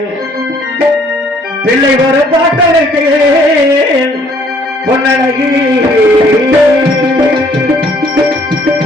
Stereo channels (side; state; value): both; normal; correlation 0.62